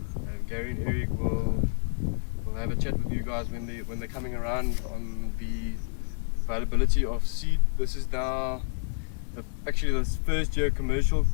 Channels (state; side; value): silent; right; digital silence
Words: Gary and Eric will have a chat with you guys when they're coming around on the availability of seed. This is now actually this first year commercial